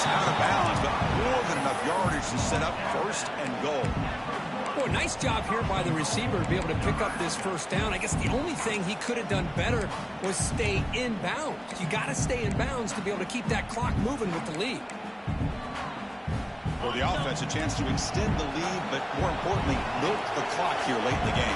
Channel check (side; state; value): both; identical; correlation 1.00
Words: out of bounds, but more than enough yardage to set up first and goal. Boy, nice job here by the receiver to be able to pick up this first down. I guess the only thing he could have done better was stay in bounds. You got to stay in bounds to be able to keep that clock moving with the lead. For the offense, a chance to extend the lead, but more importantly, milk the clock here late in the